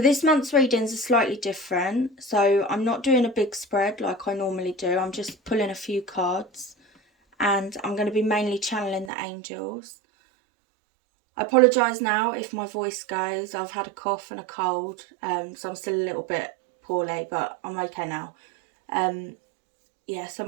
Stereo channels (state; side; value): drops out; left; at 9.1 s